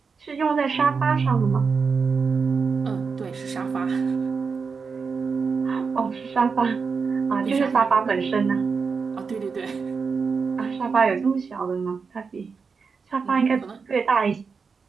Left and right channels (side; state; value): left; quieter; 5.2 dB